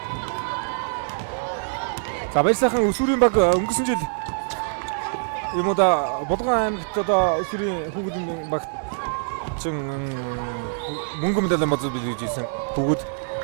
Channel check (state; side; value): silent; left; 61 dB below the other